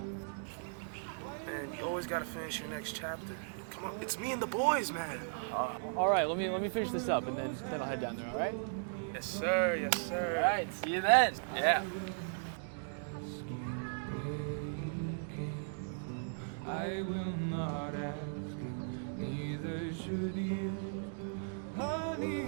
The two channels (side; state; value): left; silent; digital silence